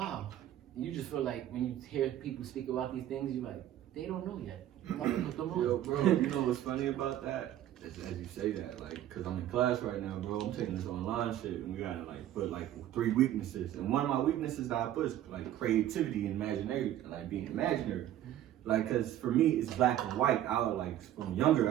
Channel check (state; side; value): quieter; left; 12.3 dB